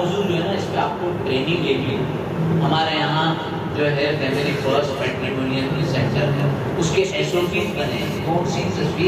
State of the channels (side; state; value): both; identical; correlation 1.00